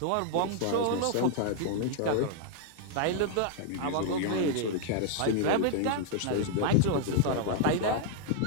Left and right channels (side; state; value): both; different; correlation -0.01